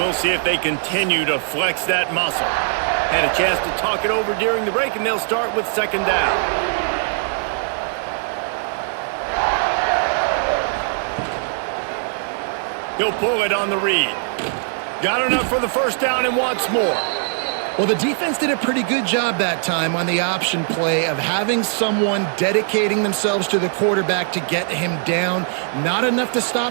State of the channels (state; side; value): silent; left; 65 dB below the other